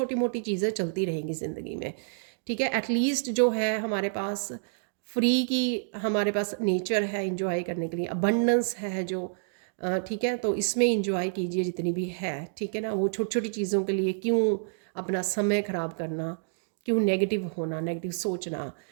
मोटी चीज़ें चलती रहेंगी ज़िंदगी में, ठीक है। एटलीस्ट जो है हमारे पास फ्री की, हमारे पास नेचर है इंजॉय करने के लिए, अबंडेंस है जो, ठीक है। तो इसमें इंजॉय कीजिए जितनी भी है, ठीक है ना। वो छोटी छोटी चीज़ों के लिए क्यों अपना समय ख़राब करना, क्यों नेगेटिव होना, नेगेटिव सोचना।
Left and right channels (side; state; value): left; silent; digital silence